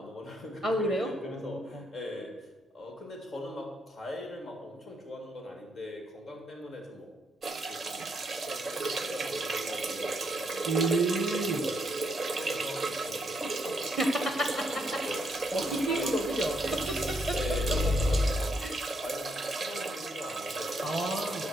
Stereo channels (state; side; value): normal; both; correlation 0.76